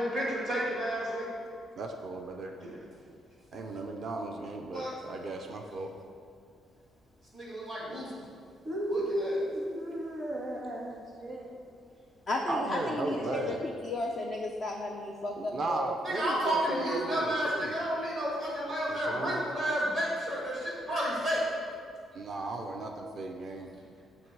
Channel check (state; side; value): normal; both; correlation 0.75